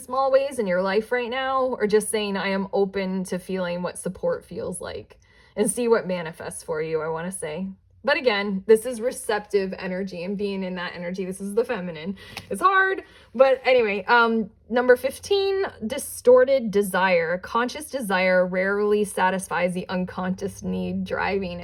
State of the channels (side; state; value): both; identical; correlation 1.00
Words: ways in your life right now, or just saying, I am open to feeling what support feels like and see what manifests for you, I want to say. But again, this is receptive energy and being in that energy. This is the feminine. It's hard, but anyway, number 15, distorted desire. Conscious desire rarely satisfies the unconscious need driving